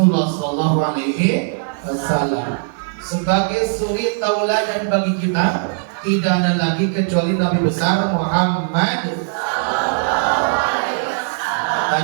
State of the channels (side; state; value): left; silent; 63 dB below the other